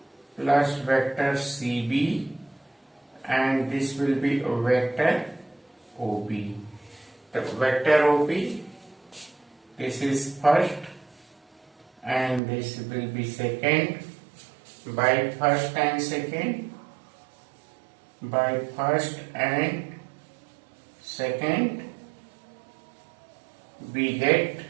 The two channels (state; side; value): drops out; left; at 12.4 s